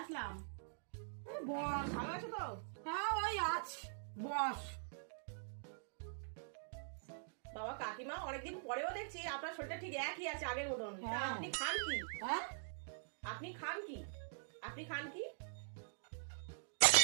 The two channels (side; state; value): left; silent; digital silence